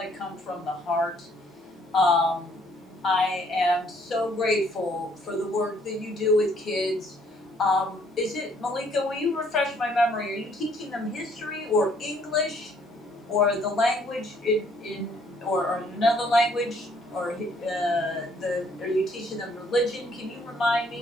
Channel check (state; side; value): normal; both; correlation 0.64